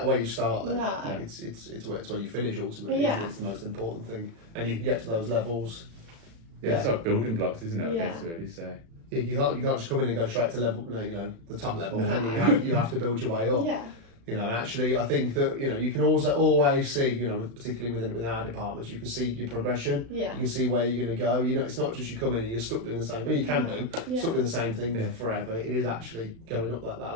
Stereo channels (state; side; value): late; left; 36 ms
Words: where you start then. No. It's where you finish ultimately. Yeah. It's the most important thing, and you can get to those levels. Yeah, it's like building blocks, isn't it? I guess really. So you can't just come in and go straight to level, you know, the top level. No. You have to build your way up. Yeah. You know, actually, I think that, you know, you can also always see, you know, particularly within our departments, you can see your progression. Yeah. You can see where you're going to go. You know, it's not just you come in and you're stuck doing the same. Well, you can do stuck doing the same thing forever. It is actually going up that